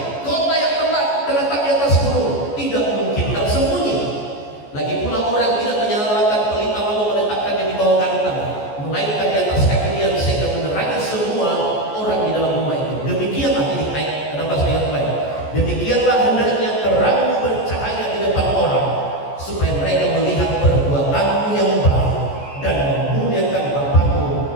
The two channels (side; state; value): right; late; 14 ms